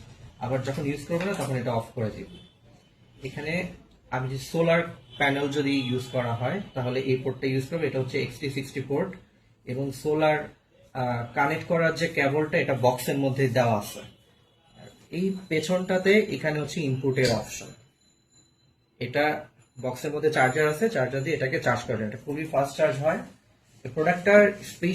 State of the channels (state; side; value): identical; both; correlation 1.00